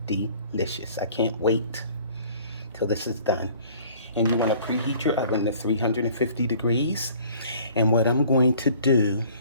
delicious. I can't wait till this is done. And you want to preheat your oven to 350 degrees. And what I'm going to do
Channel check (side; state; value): both; inverted; correlation -0.53